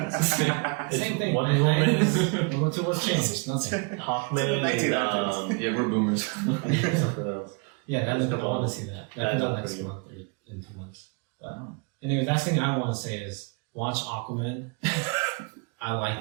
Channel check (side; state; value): left; quieter; 33.8 dB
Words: It's Same thing. Wonder Woman, World War II was changed. Nothing. Hawkman, and Yeah, we're boomers. I think something else. Yeah, There's a I couple want of- to see that. that That comes out looks next pretty month or in 2 months. But anyway, last thing I want to say is watch Aquaman. I like